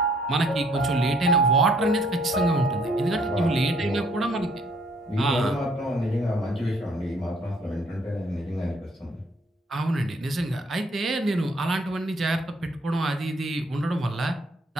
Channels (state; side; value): normal; both; correlation 0.63